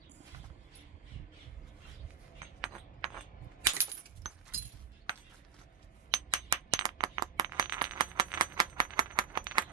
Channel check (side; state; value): left; quieter; 6.7 dB